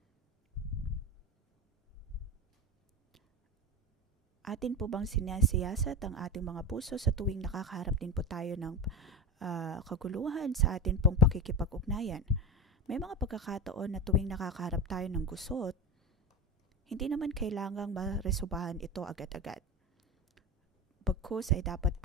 Atin po bang sinasiyasat ang ating mga puso sa tuwing nakakaharap din po tayo ng kaguluhan sa atin pong pakikipag-ugnayan? May mga pagkakataon na tuwing nakakaharap tayo ng gusot, hindi naman kailangang maresobahan ito agad-agad. Bagkus ay dapat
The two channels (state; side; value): normal; both; correlation 0.23